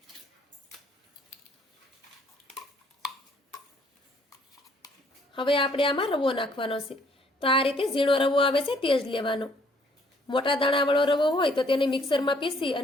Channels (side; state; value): both; normal; correlation 0.63